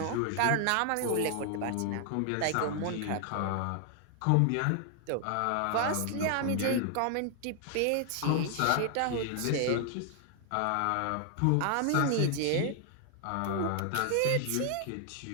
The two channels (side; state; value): both; different; correlation 0.00